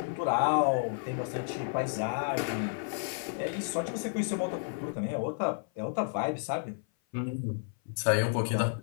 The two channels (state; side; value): silent; right; 56 dB below the other